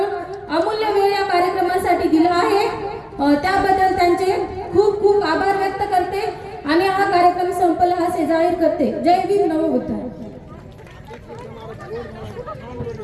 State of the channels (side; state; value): both; identical; correlation 1.00